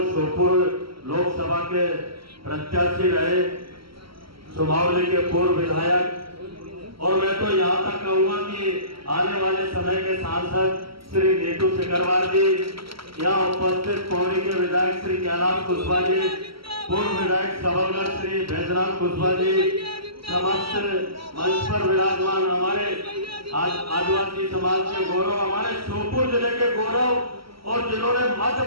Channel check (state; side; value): late; left; 0.75 ms